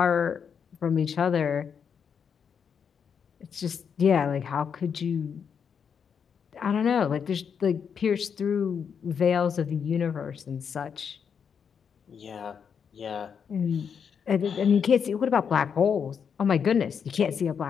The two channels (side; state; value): right; quieter; 7.0 dB